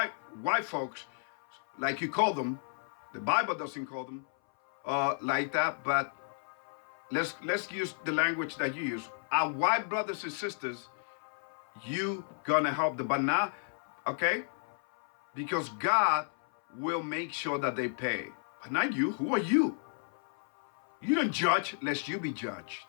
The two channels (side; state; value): right; silent; 56 dB below the other